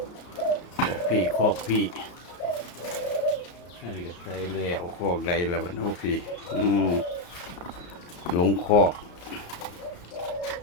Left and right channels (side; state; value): right; late; 34 ms